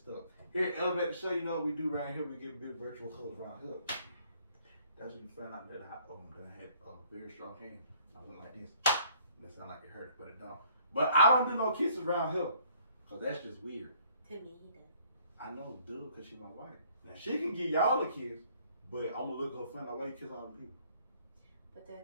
stuck. Here at Elevate the Show, you know what we do right here? We give big virtual colors around here. That's when you find out that I had a very strong hand. I went like this. That sound like it hurt, but it don't. But I don't do no kisses around here, because that's just weird. To me, he does. I know, dude, because she's my wife. Now, she can give y'all a kiss, but I'm going to look her funny like, why you kiss all the people? But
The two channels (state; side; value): inverted; both; correlation -0.61